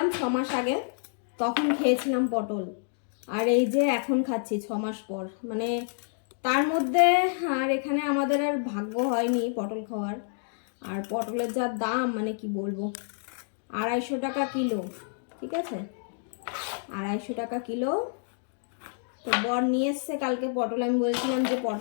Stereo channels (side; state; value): right; silent; digital silence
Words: 6 মাস আগে, তখন খেয়েছিলাম পটল। আর এই যে এখন খাচ্ছি 6 মাস পর। মানে তার মধ্যে আর এখানে আমাদের আর ভাগ্য হয়নি পটল খাওয়ার। আর পটলের যা দাম, মানে কি বলবো, 250 টাকা কিলো। ঠিক আছে, 250 টাকা কিলো। তো বর নিয়ে এসছে কালকে পটল। আমি বলছিলাম যে